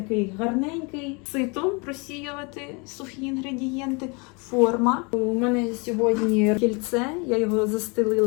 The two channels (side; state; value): right; quieter; 31.1 dB